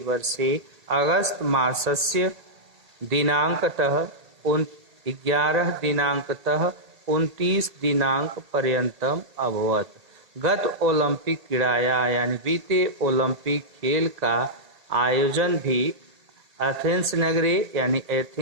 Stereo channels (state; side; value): late; left; 1.8 ms